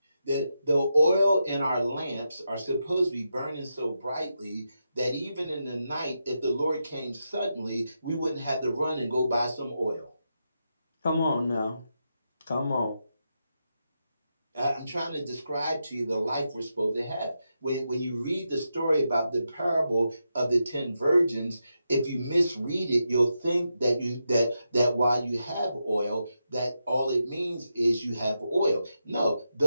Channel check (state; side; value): inverted; both; correlation -0.86